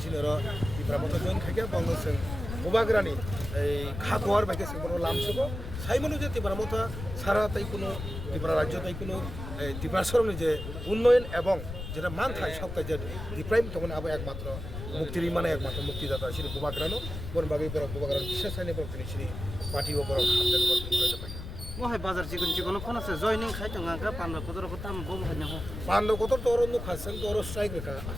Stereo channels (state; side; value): noise; left; rumble, 8 dB below the sound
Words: শ্রী Dipra Mothabai জয়েন খাইকা বাংলাদেশ গোবাগ্রানি এই খাগোয়ার বাইকে বড় লামসব সাইমনু যে Dipra Mothabai সারা তাই কোনো ত্রিপুরা রাজ্য তাই কোনো ত্রিপুরা সরণি যে উন্নয়ন এবং যেটা মান থাকে সবটাই যে ডিপ্রাইম তখন আবার একমাত্র মুক্তির মানে একমাত্র মুক্তিদাতা শ্রী গোবাগ্রানো বনবাগী বড় গোবাগ্রান বিশেষ আইনে বড় তিনি শ্রী পার্টি ও বড় হামদান বড় মহাই বাজার চিকন চিকন ফোন আছে জয়নিং খাইতো গাঙ্গা পান্ডা কত রকম দাম বম হয় না পান্ডা কত তোর অন্য খাচ্ছেন তোর স্ট্রাইক রেখা